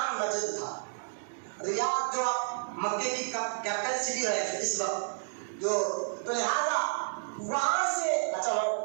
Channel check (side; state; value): left; silent; digital silence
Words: نجد تھا. ریاض جو اب مکے کی کیپٹل سٹی ہے اس وقت جو، تو لہٰذا وہاں سے اچھا